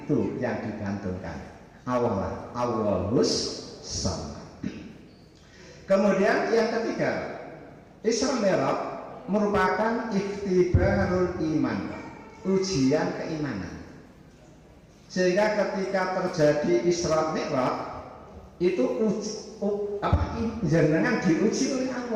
yang digantungkan, Allah, Allahus Shomad. Kemudian yang ketiga, Isra Mi'raj merupakan ikhtibarul iman, ujian keimanan. Sehingga ketika terjadi Isra Mi'raj itu jenengan diuji oleh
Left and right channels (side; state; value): both; identical; correlation 1.00